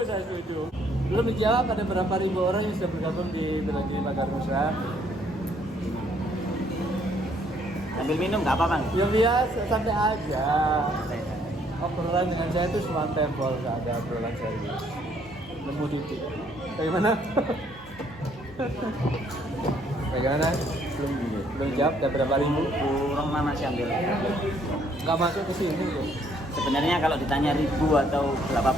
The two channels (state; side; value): normal; both; correlation 0.66